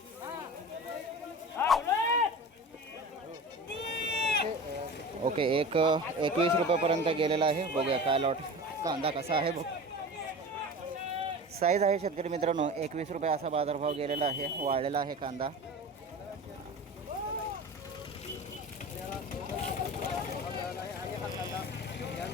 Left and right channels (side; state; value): both; normal; correlation 0.34